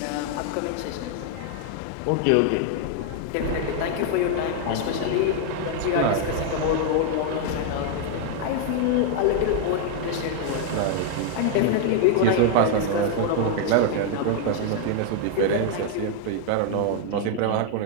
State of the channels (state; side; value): different; both; correlation 0.00